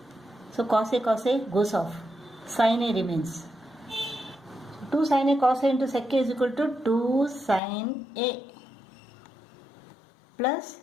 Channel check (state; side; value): drops out; right; at 7.6 s